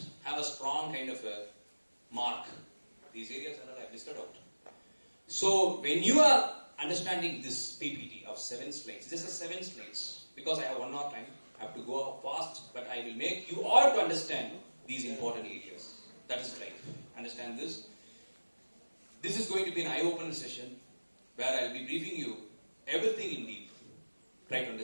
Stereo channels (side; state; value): both; inverted; correlation -1.00